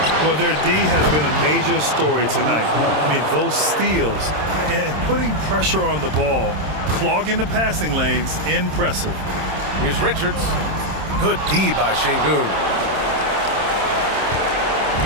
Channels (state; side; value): late; left; 26 ms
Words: Well, their D has been a major story tonight. I mean, those steals and putting pressure on the ball, clogging the passing lanes, impressive. Here's Richards. Good D by Şengün.